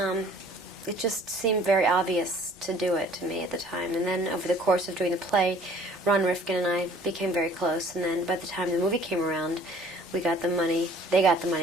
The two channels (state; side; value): normal; both; correlation 0.53